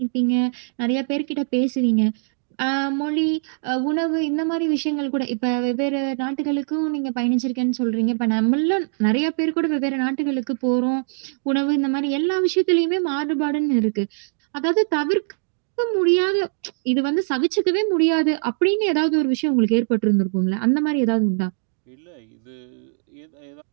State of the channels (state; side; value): silent; left; digital silence